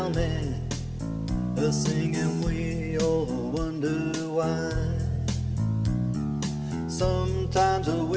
me, singing, we all wonder why. Sometimes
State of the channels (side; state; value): both; identical; correlation 1.00